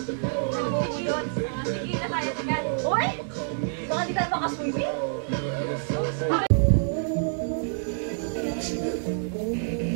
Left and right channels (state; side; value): silent; left; digital silence